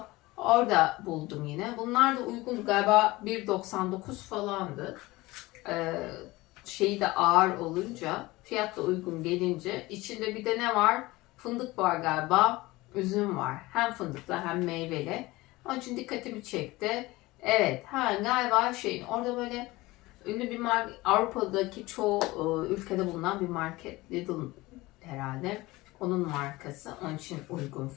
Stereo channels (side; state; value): right; quieter; 20.3 dB